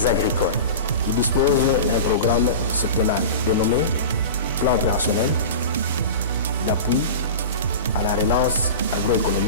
agricoles. Il dispose d'un programme septennal dénommé Plan opérationnel d'appui à la relance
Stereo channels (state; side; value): inverted; both; correlation -0.30